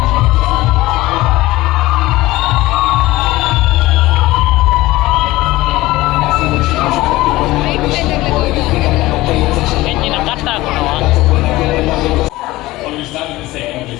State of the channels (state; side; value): quieter; right; 18.4 dB